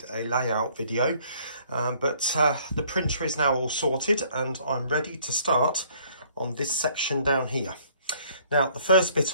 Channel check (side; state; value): both; inverted; correlation -0.60